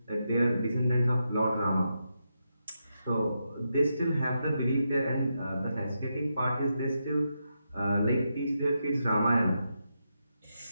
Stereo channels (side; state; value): both; inverted; correlation -0.85